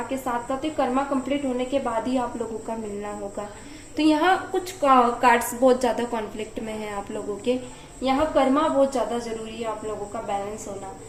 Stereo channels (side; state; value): both; identical; correlation 1.00